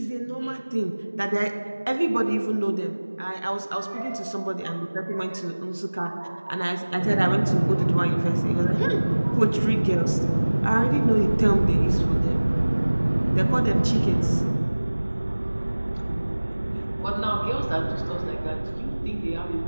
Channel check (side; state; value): both; inverted; correlation -1.00